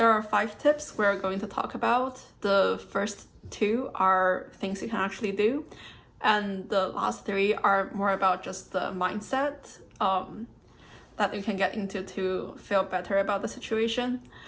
are 5 tips we're going to talk about. The first 2 are things you can actually do, and the last 3 are more about just the mindset that you can get into to feel better about the situation.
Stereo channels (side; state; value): both; identical; correlation 1.00